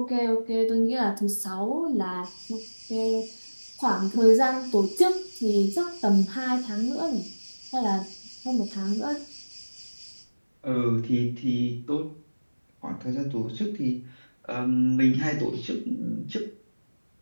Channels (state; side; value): inverted; both; correlation -1.00